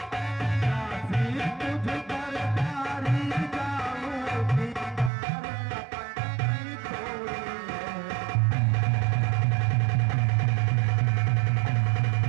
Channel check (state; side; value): drops out; left; at 5.1 s